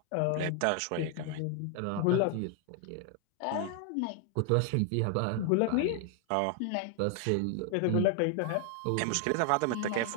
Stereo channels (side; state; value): both; different; correlation 0.00